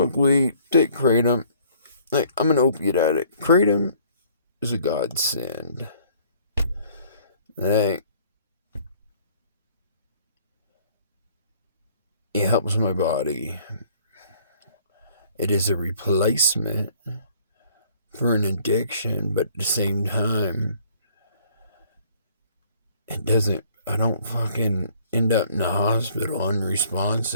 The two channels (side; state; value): both; inverted; correlation -0.58